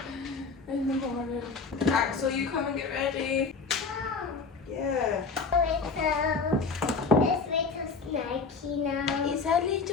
in the morning. Axyl, you come and get ready. Yeah. It's little snaky now. He's a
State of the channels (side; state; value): right; quieter; 4.5 dB